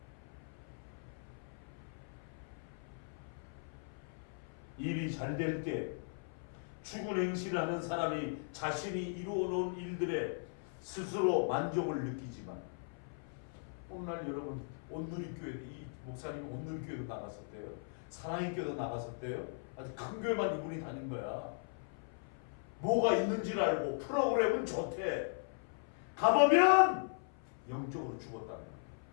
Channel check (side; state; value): right; silent; 52 dB below the other